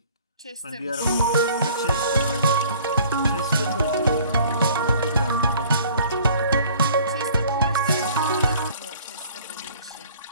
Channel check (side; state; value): both; inverted; correlation -0.53